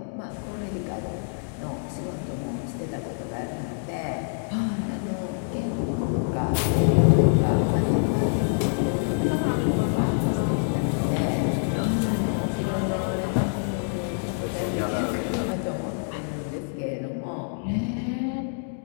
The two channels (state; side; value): silent; right; digital silence